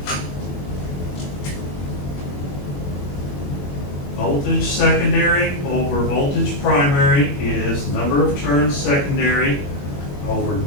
Voltage secondary over voltage primary is number of turns secondary over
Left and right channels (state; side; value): late; right; 21 ms